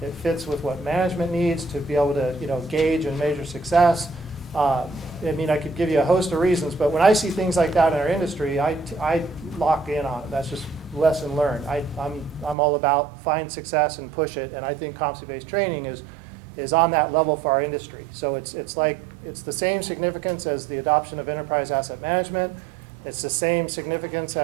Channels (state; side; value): drops out; left; at 12.6 s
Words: It fits with what management needs to be able to gauge and measure success. I could give you a host of reasons, but when I see things like that in our industry, I lock in on it. That's just lesson learned. I'm all about find success and push it, and I think competency-based training is on that level for our industry. So it's the same significance as the adoption of enterprise asset management. It's the same significance